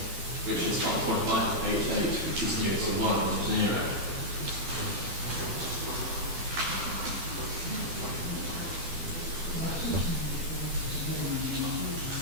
which is 5.588, which is new to 1 and 0.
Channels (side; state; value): left; late; 12 ms